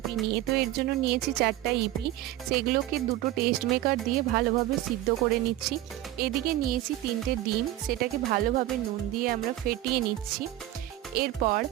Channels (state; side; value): quieter; left; 14.8 dB